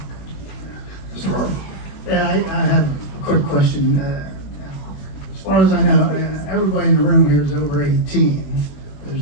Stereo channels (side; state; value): right; late; 21 ms